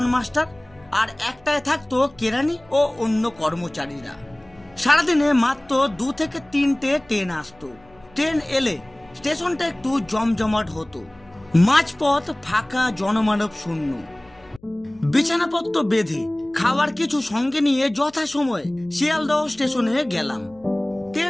মাস্টার আর একটায় থাকতো কেরানি ও অন্য কর্মচারীরা। সারাদিনে মাত্র 2 থেকে 3টে ট্রেন আসতো। ট্রেন এলে স্টেশনটা একটু জমজমাট হতো। মাঝপথ ফাঁকা, জনমানব শূন্য। বিছানাপত্র বেঁধে খাবার কিছু সঙ্গে নিয়ে যথাসময়ে শিয়ালদহ স্টেশনে গেলাম।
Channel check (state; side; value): noise; left; hum, 28 dB below the sound